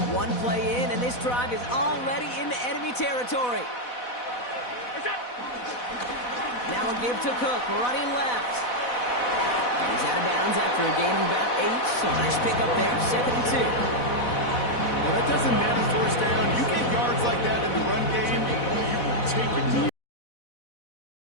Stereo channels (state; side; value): late; right; 4.1 ms